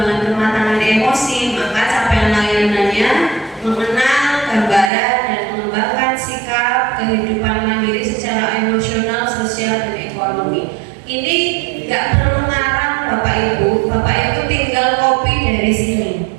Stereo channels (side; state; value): left; drops out; at 4.9 s